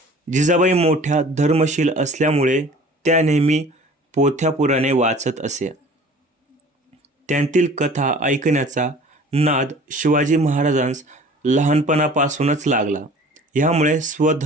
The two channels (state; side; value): normal; both; correlation 0.47